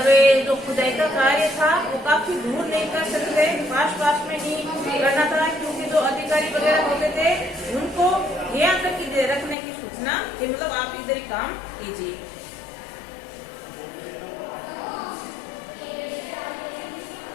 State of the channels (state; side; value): drops out; right; at 9.6 s